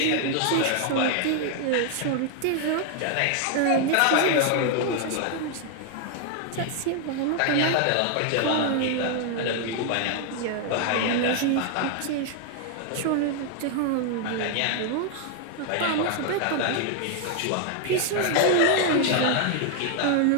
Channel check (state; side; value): different; both; correlation 0.00